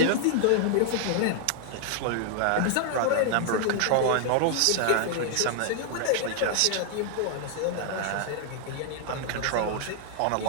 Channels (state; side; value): different; both; correlation 0.00